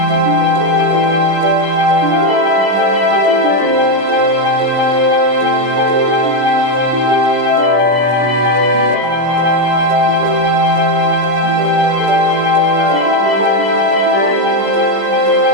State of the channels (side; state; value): left; late; 17 ms